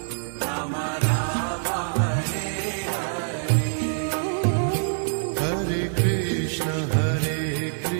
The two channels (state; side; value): silent; left; digital silence